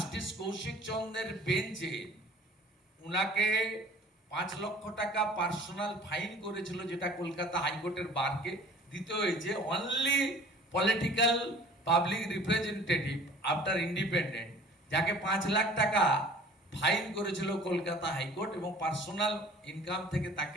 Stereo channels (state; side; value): normal; both; correlation 0.48